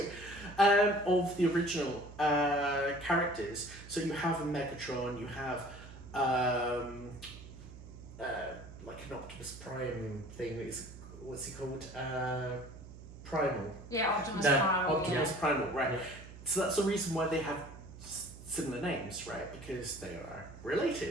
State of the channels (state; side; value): noise; right; hum, 16 dB below the sound